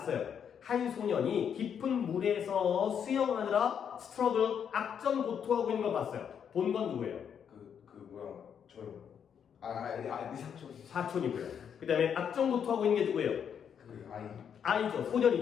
한 소년이 깊은 물에서 수영하느라 스트러글 악전 고투하고 있는 걸 봤어요. 본 건 누구예요? 그 뭐야 저요. 네 삼촌. 사촌이고요. 그 다음에 악전 고투하고 있는 게 누구예요? 그 아이. 아이죠.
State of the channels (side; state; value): right; quieter; 7.9 dB